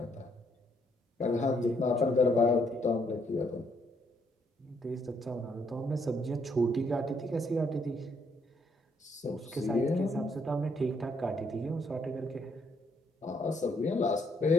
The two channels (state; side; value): normal; both; correlation 0.71